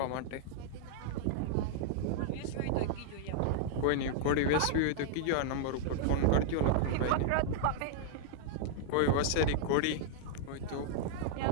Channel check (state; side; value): different; both; correlation -0.01